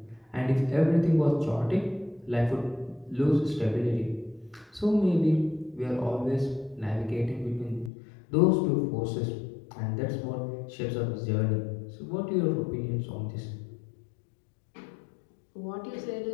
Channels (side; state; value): right; drops out; at 7.9 s